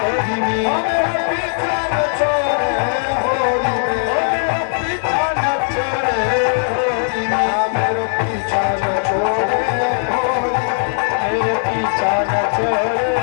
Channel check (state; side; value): silent; right; digital silence